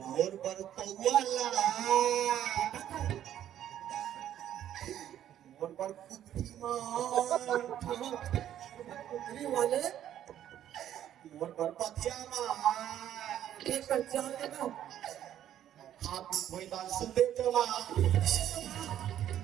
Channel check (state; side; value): quieter; left; 11.1 dB